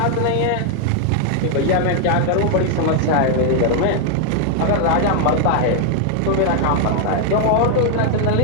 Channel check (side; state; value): both; different; correlation 0.00